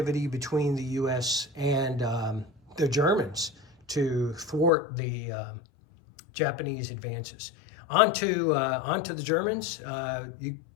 between the U.S. and the Germans to thwart the Japanese advances. Onto the Germans, you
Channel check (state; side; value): drops out; right; at 4.7 s